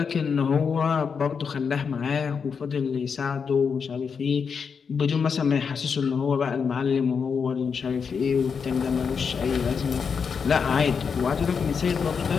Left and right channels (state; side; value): quieter; right; 6.1 dB